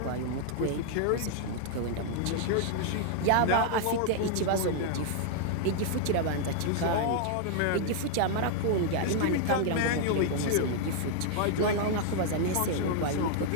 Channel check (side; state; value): both; different; correlation 0.00